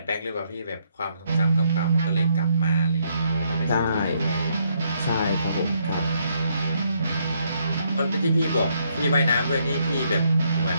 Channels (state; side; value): inverted; both; correlation -0.73